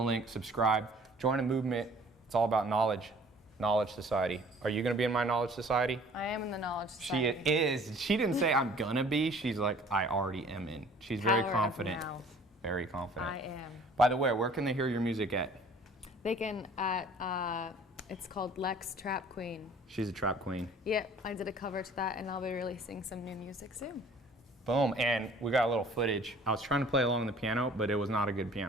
subscribe, join a movement. It's all about knowledge. Knowledge Society. Are you going to be in my Knowledge Society? I am in the Knowledge Society. She is. She didn't say I'm going to be. She's like, I already am in. She's very confident. Very confident. I am. By the way, where can they hear your music at? They can at, it's called Lex Trap Queen. She's a trap queen. Yep, I did a cover to that, and I'll be releasing some new music soon. Boom, and we got a little footage. I was trying to play along on the piano, but it was not a good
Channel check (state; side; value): normal; both; correlation 0.52